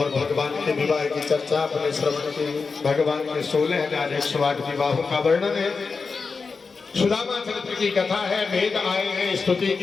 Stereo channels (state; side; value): quieter; right; 4.7 dB